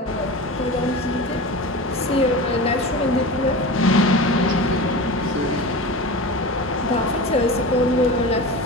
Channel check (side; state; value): both; normal; correlation 0.30